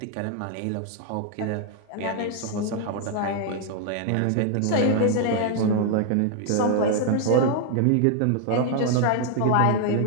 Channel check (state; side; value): different; both; correlation 0.00